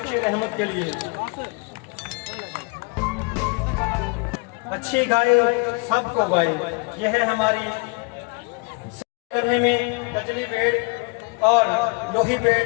रहमत के लिए। अच्छी गाय सबको गाय, यह है हमारी करने में कजली बेड़ और लोही बेड़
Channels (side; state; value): right; quieter; 30.3 dB